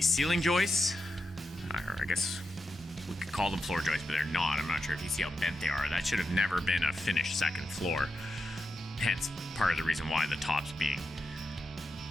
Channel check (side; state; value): both; normal; correlation 0.88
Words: ceiling joists, or I guess we could call them floor joists, but they're not. I'm not sure if you see how bent they are. That should have never been a finished second floor. Hence, part of the reason why the top's being